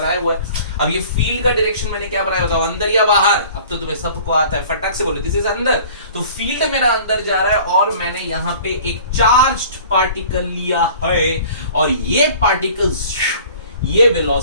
हुआ है। अब ये फील्ड का डायरेक्शन मैंने क्या बनाया, बताओ, अंदर या बाहर? अब तो तुम्हें सबको आता है, फटाक से बोलो, दिस इज अंदर। तो फील्ड मेरा अंदर जा रहा है और मैंने यहां पे एक चार्ज्ड पार्टिकल लिया है और ये पार्टिकल, ये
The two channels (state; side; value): inverted; both; correlation -0.47